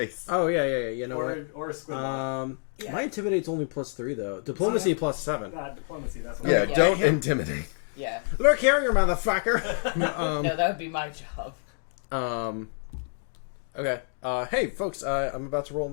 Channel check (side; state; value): right; silent; 60 dB below the other